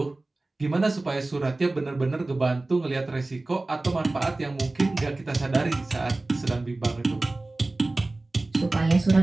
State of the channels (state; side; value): quieter; left; 3.0 dB